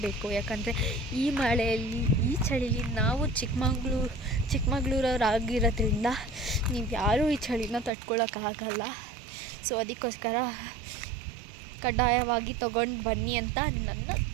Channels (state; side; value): drops out; left; at 7.9 s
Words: ಯಾಕಂದರೆ ಈ ಮಳೆಯಲ್ಲಿ, ಈ ಚಳಿಲಿ ನಾವು ಚಿಕ್ಕಮಂಗ್ಳೂರವರಾಗಿರೋದ್ರಿಂದ ನೀವು ಯಾರೂ ಈ ಚಳಿನ ತಡ್ಕೊಳಕ್ಕಾಗಲ್ಲ. ಸೊ ಅದಕ್ಕೋಸ್ಕರ ಕಡ್ಡಾಯವಾಗಿ ತೊಗೊಂಡು ಬನ್ನಿ ಅಂತ ನನ್ನ